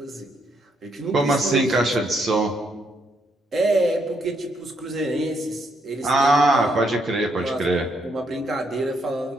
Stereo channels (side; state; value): both; normal; correlation 0.75